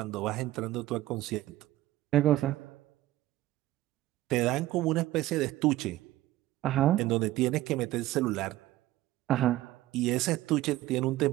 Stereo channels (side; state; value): left; quieter; 15.7 dB